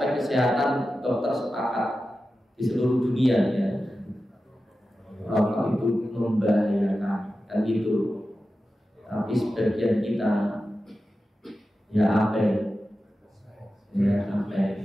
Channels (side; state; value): both; normal; correlation 0.93